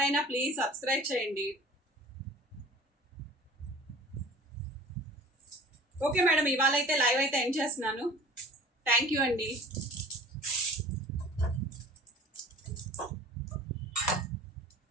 ప్లీజ్ సబ్స్క్రైబ్ చేయండి. ఓకే మేడం, ఇవాళ అయితే లైవ్ అయితే ఎండ్ చేస్తున్నాను. థ్యాంక్ యూ అండి.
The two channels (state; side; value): normal; both; correlation 0.43